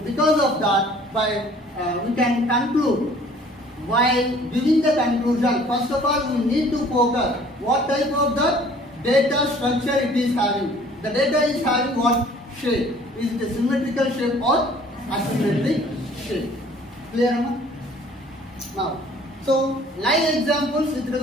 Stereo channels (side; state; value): both; normal; correlation 0.53